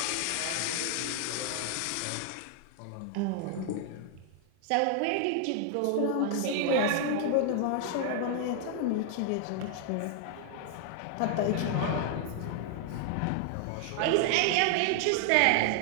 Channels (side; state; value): both; different; correlation 0.00